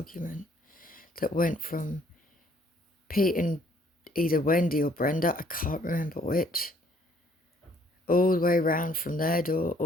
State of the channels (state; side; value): normal; both; correlation 0.63